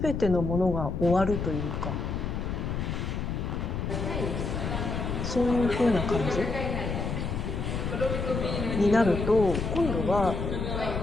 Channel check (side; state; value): left; noise; rumble, 2 dB below the sound